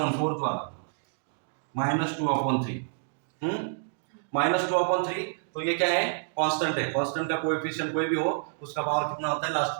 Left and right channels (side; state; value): left; silent; digital silence